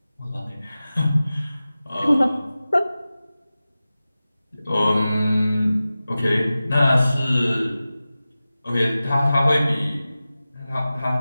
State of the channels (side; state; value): both; inverted; correlation -0.95